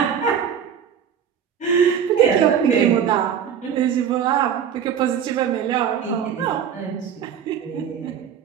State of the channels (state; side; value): quieter; left; 8.2 dB